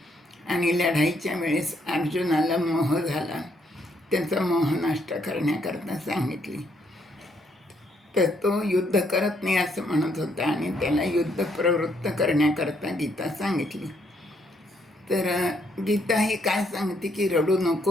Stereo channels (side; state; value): both; normal; correlation 0.72